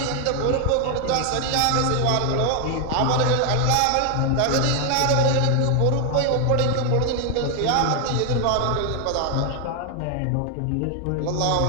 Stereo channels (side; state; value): both; different; correlation 0.00